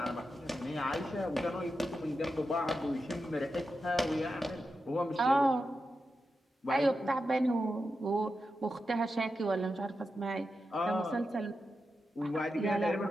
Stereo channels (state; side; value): normal; both; correlation 0.89